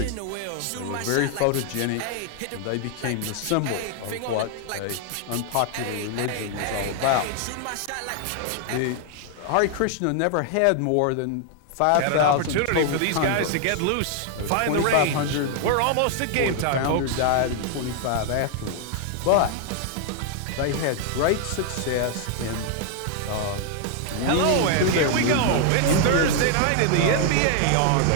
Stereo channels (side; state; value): both; different; correlation 0.00